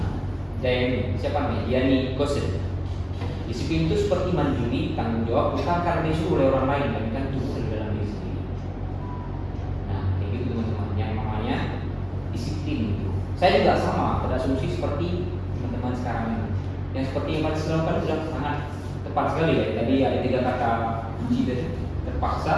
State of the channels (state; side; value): identical; both; correlation 1.00